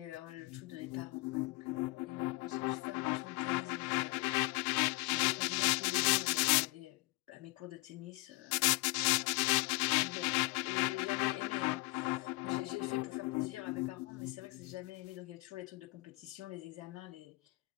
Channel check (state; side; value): quieter; right; 25.0 dB